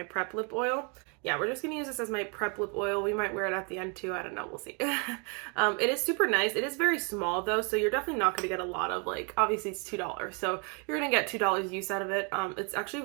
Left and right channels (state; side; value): quieter; left; 35.0 dB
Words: prep lip oil. Yeah, we're just gonna use this as my prep lip oil. We might wear it at the end too, I don't know, we'll see. It is super nice. It is very small though, so you're definitely not gonna get a lot of, like, obviously it's $2, so you're gonna get $2 use out of it. It's actually